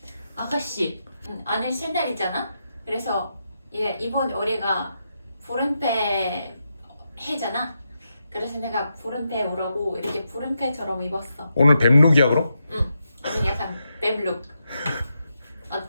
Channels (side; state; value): both; inverted; correlation -0.85